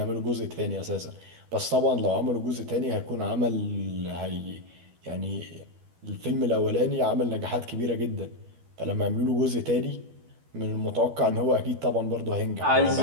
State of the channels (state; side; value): late; left; 12 ms